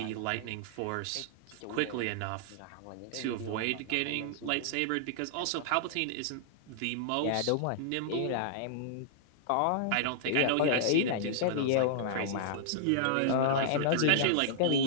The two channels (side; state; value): both; different; correlation -0.01